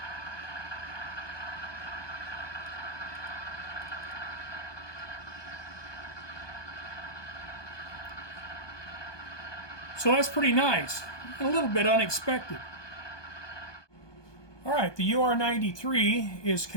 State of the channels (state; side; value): late; right; 1.2 ms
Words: So that's pretty nice, a little bit unexpected. All right, the UR93 is